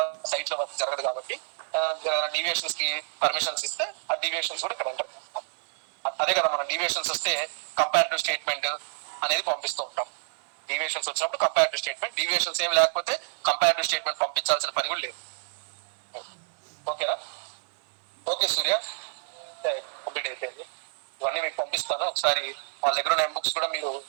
సైట్ లో వర్క్ జరగదు కాబట్టి డీవియేషన్స్ కి పర్మిషన్స్ ఇస్తే ఆ డీవియేషన్స్ కూడా ఇక్కడ ఎంటర్ చేస్తాం. అదే కదా మన డీవియేషన్స్ వస్తే కంపారిటివ్ స్టేట్మెంట్ అనేది పంపిస్తూ ఉంటాం. డీవియేషన్స్ వచ్చినప్పుడు కంపారిటివ్ స్టేట్మెంట్, డీవియేషన్స్ ఏమి లేకపోతే కంపారిటివ్ స్టేట్మెంట్ పంపించాల్సిన పని కూడా లేదు. ఓకేనా? ఓకే సూర్య, కంప్లీట్ అయిపోయింది. ఇవన్నీ మీకు పంపిస్తాను. ఒకసారి వాళ్ళ దగ్గర ఉన్న బుక్స్ కూడా మీరు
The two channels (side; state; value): left; silent; digital silence